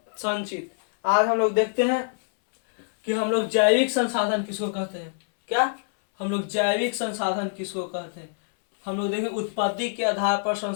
आज हम लोग देखते हैं कि हम लोग जैविक संसाधन किसको कहते हैं। क्या हम लोग जैविक संसाधन किसको कहते हैं? हम लोग देखें उत्पत्ति के आधार पर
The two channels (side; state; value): right; silent; 62 dB below the other